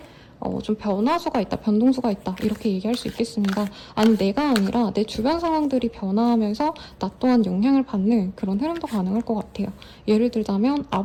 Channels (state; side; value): identical; both; correlation 1.00